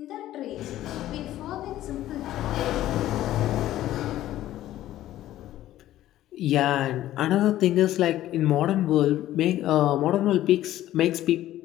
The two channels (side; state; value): right; quieter; 13.8 dB